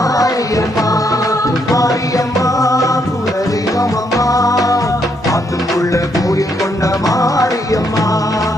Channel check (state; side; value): normal; both; correlation 0.75